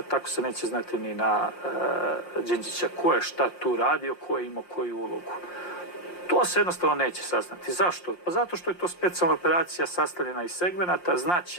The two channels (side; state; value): right; late; 5.7 ms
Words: tako se neće znati ni na Đinđića, ko je šta tu radio, ko je imao koju ulogu. To se jednostavno neće saznati. Zašto? Pa zato što je to specijalna operacija sastavljena iz segmenata,